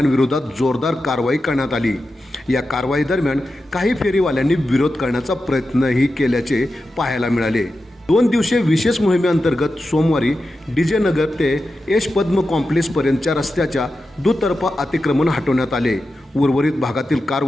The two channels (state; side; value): normal; both; correlation 0.91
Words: जोरदार कारवाई करण्यात आली। या कारवाई दरम्यान काही फेरीवाल्यांनी विरोध करण्याचा प्रयत्नही केल्याचे पाहायला मिळाले। 2 दिवसीय विशेष मोहिमेअंतर्गत सोमवारी डीजे नगर ते यश पद्म कॉम्प्लेक्स पर्यंतच्या रस्त्याच्या दुतर्फा अतिक्रमण हटवण्यात आले। उर्वरित भागातील